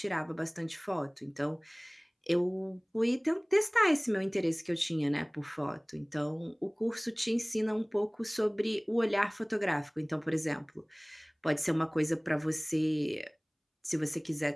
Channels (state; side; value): identical; both; correlation 1.00